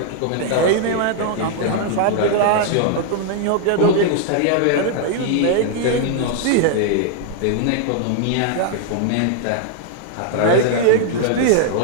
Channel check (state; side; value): different; both; correlation -0.01